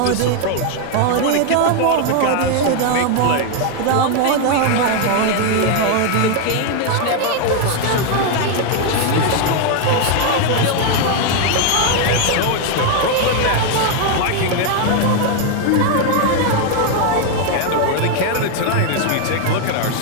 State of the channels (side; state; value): both; different; correlation 0.01